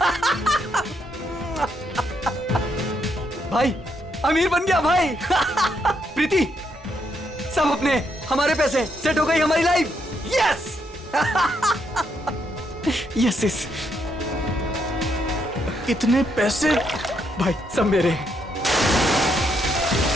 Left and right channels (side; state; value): both; normal; correlation 0.76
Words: भाई, अमीर बन गया भाई। प्रीति, सब अपने हमारे पैसे, सेट हो गई हमारी लाइफ। Yes yes yes. इतने पैसे भाई, सब मेरे।